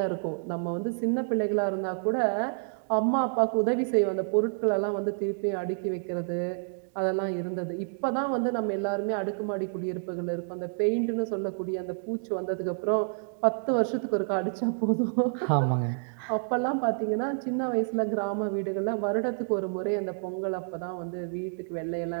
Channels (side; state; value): left; silent; digital silence